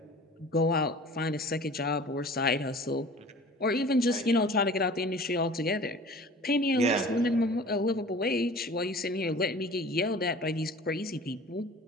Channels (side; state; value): both; normal; correlation 0.43